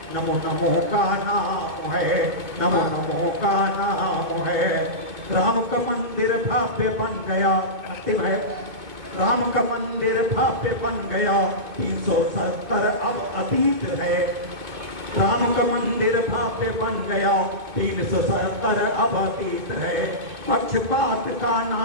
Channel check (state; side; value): late; left; 2.4 ms